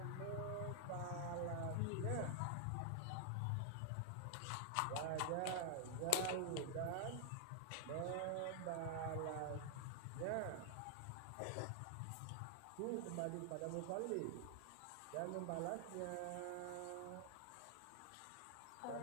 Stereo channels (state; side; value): different; both; correlation -0.01